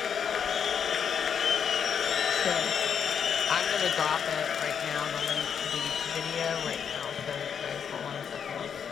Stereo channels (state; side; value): quieter; right; 7.5 dB